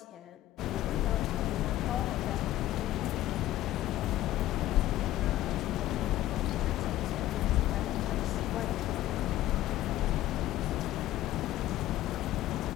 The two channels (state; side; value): quieter; right; 14.6 dB